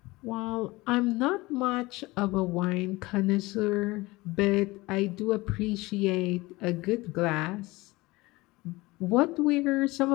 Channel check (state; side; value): quieter; right; 21.4 dB